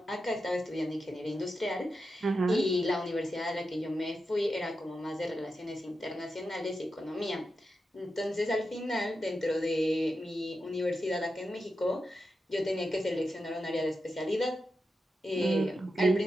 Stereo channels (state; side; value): normal; both; correlation 0.89